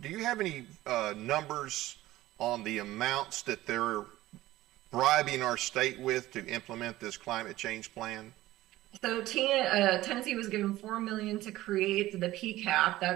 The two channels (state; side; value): quieter; left; 16.3 dB